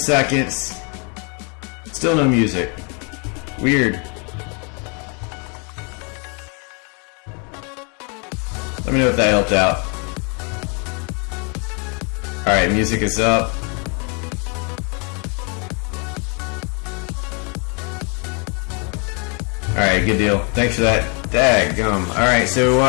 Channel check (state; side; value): quieter; right; 35.7 dB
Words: Still no music. Weird. Let me know if that helped out. Alright, music is up. Alright, good deal. Thanks for that. Daggum. Alright, so